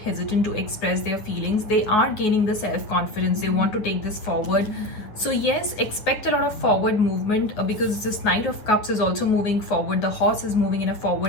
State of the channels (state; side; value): late; right; 9.3 ms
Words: to express their feelings, they are gaining the self-confidence. They want to take this forward. So yes, expect a lot of forward movement, because this Knight of Cups is also moving forward. The horse is moving in a